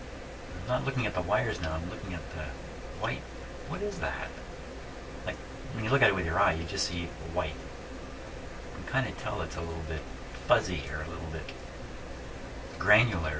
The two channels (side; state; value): both; identical; correlation 1.00